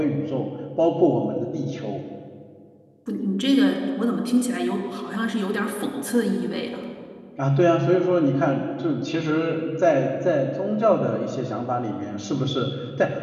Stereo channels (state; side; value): identical; both; correlation 1.00